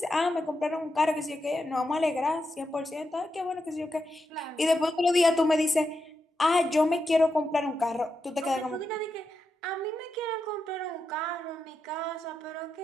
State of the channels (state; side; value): normal; both; correlation 0.86